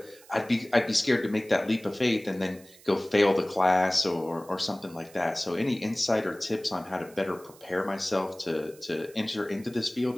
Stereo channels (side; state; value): right; noise; hiss, 24 dB below the sound